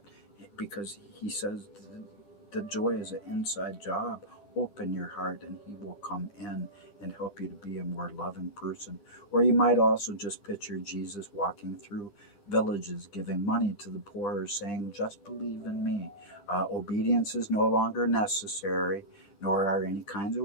because He says the joy is an inside job. Open your heart and He will come in and help you to be a more loving person. Or you might also just picture Jesus walking through villages giving money to the poor, saying, just believe in me. Obedience is no longer necessary, nor are any kinds of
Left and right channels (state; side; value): late; right; 14 ms